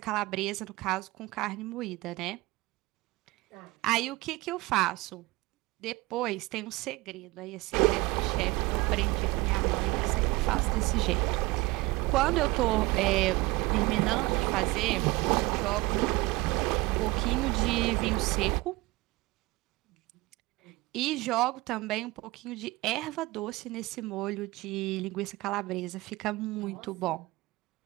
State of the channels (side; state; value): left; quieter; 21.5 dB